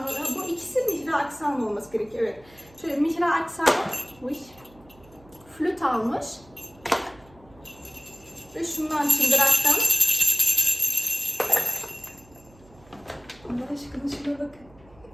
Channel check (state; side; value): noise; right; hum, 26 dB below the sound